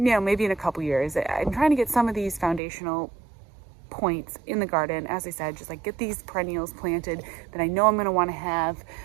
in a couple years. I'm trying to get some of these foundational points in the garden, as I said, just like get these perennials planted that I know I'm going to want to have,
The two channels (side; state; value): left; drops out; at 2.6 s